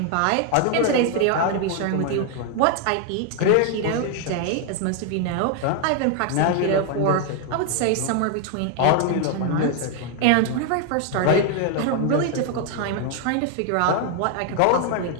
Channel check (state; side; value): different; both; correlation 0.00